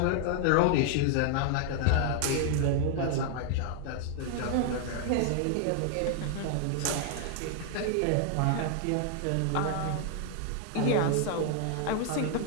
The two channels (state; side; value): different; both; correlation 0.00